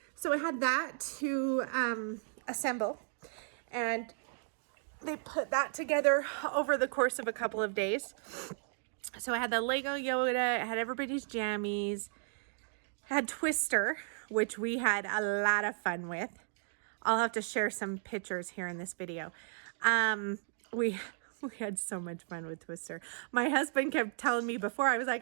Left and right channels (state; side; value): silent; left; digital silence